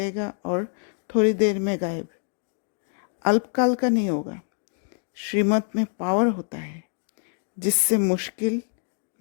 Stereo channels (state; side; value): silent; right; 61 dB below the other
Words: और थोड़ी देर में गायब, अल्पकाल का नहीं होगा। श्रीमत में पावर होता है जिससे मुश्किल,